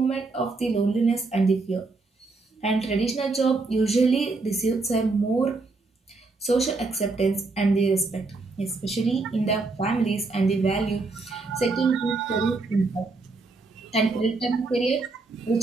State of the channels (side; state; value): left; quieter; 3.7 dB